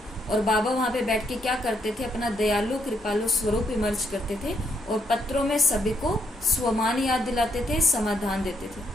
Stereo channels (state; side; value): normal; both; correlation 0.75